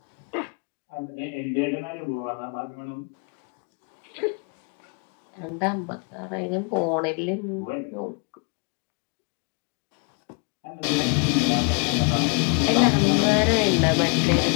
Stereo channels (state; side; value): quieter; right; 34.1 dB